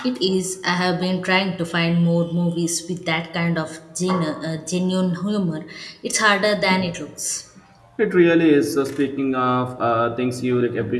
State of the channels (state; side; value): identical; both; correlation 1.00